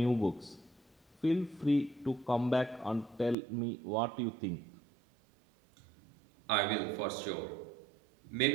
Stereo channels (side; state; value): left; drops out; at 3.4 s